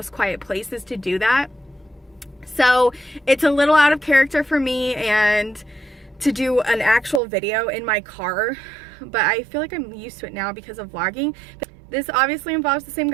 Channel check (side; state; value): left; drops out; at 7.2 s